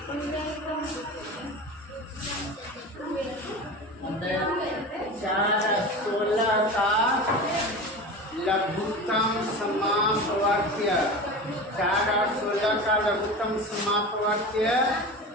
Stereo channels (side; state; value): both; normal; correlation 0.30